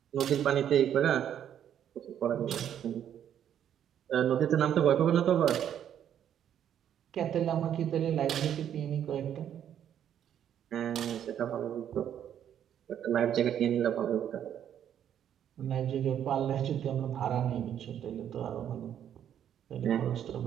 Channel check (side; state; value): left; quieter; 9.8 dB